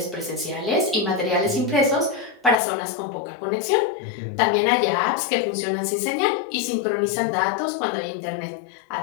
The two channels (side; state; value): right; drops out; at 2.6 s